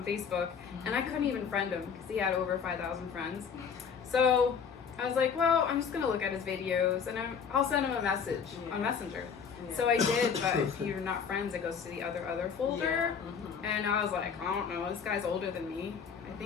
Facebook. And I couldn't even friend him because he had over 5,000 friends. So I was like, well, I'm just going to look at his videos and I'll send him a message on Messenger. Yeah. So I did, but if you're not friends, it goes to the other folder. And I was like, I don't know, this guy's older than me. I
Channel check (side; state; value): right; quieter; 6.7 dB